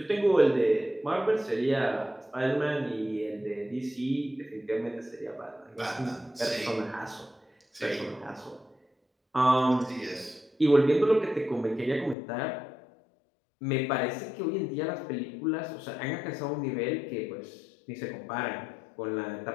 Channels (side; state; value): right; drops out; at 12.2 s